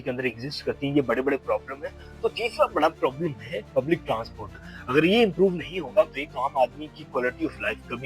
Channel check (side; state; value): both; identical; correlation 1.00